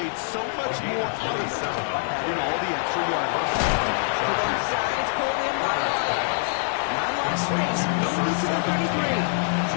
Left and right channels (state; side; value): silent; right; digital silence